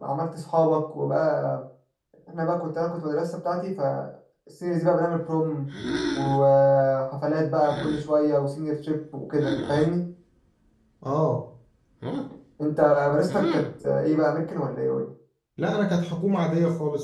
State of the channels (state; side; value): identical; both; correlation 1.00